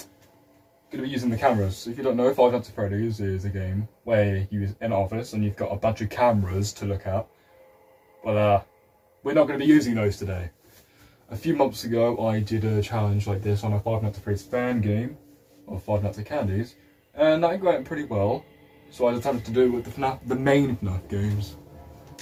going to be using the cameras. So if you don't know, Five Nights at Freddy's is a game where you're in an office and you've got a bunch of cameras to look at. But we're not going to be using those today. A few months ago, I did a challenge like this on a Five Nights at Freddy's fan game, or Five Nights at Candy's, and that went pretty well. So I decided to do it with the main FNAF games.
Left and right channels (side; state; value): both; identical; correlation 1.00